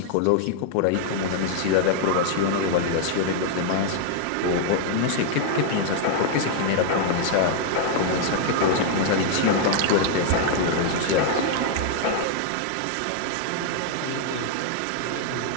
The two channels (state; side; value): different; both; correlation 0.00